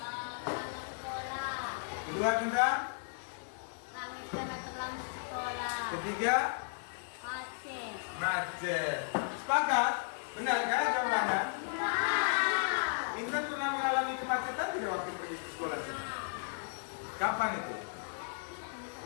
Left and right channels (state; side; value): silent; right; digital silence